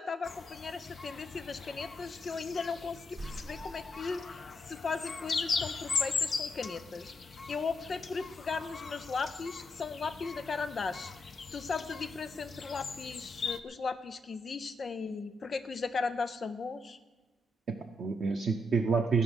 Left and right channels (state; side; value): normal; both; correlation 0.81